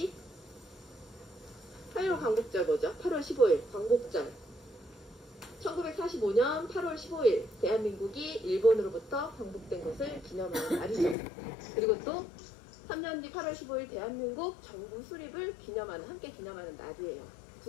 8월 광복절 뭐죠? 8월 15일 광복절. 1945년 8월 15일 대한민국이 일본으로부터 광복된 것을 기념하는 날이죠. 그리고 또 3년 뒤 8월 15일 대한민국 정부 수립을 함께 기념하는 날이에요.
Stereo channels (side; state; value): right; drops out; at 11.2 s